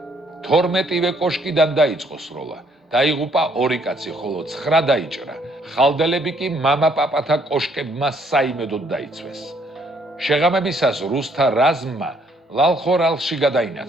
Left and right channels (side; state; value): both; normal; correlation 0.67